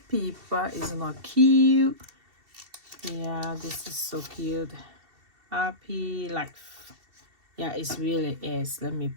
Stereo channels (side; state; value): left; late; 2.7 ms